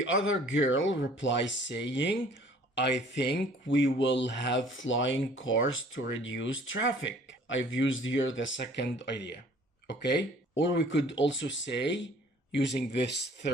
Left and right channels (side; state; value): both; normal; correlation 0.53